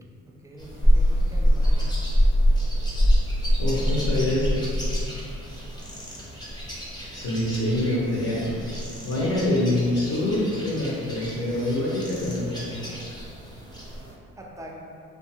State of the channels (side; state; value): both; normal; correlation 0.79